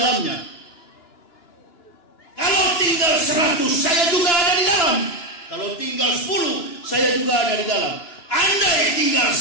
Kalau tinggal 100, saya juga ada di dalam. Kalau tinggal 10, saya juga ada di dalam. Andai tinggal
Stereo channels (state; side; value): late; right; 3.0 ms